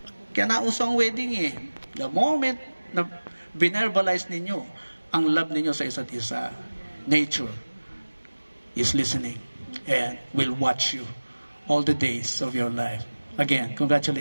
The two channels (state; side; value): inverted; both; correlation -1.00